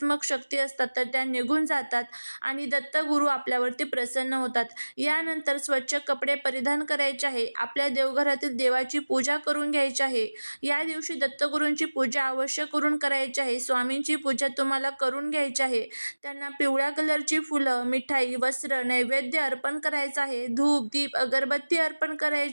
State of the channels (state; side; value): inverted; both; correlation -1.00